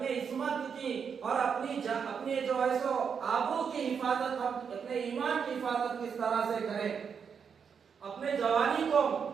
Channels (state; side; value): quieter; left; 6.7 dB